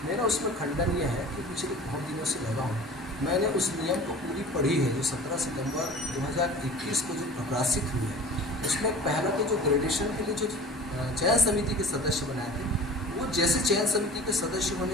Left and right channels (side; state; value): both; normal; correlation 0.40